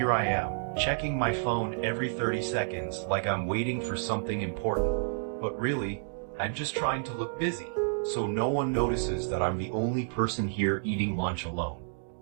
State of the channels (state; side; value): silent; left; digital silence